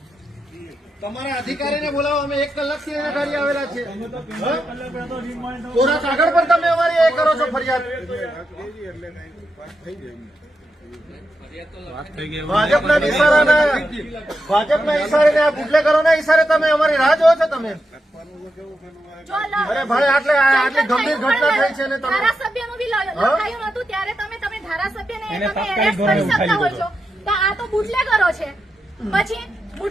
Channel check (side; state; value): both; normal; correlation 0.86